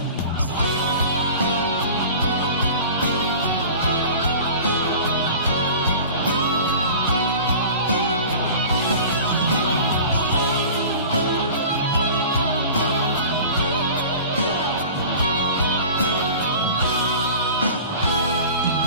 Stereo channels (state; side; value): inverted; both; correlation -0.39